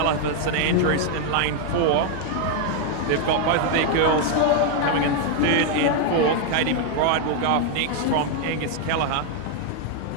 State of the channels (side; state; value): both; different; correlation 0.00